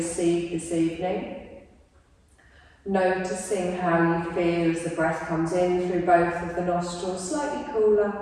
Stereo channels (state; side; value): identical; both; correlation 1.00